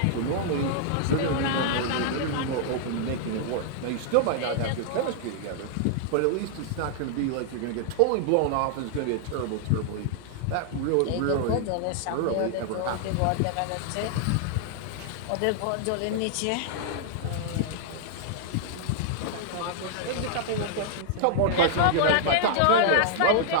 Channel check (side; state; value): both; different; correlation -0.01